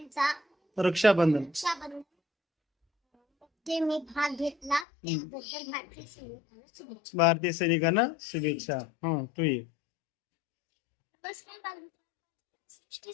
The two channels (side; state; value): right; drops out; at 4.9 s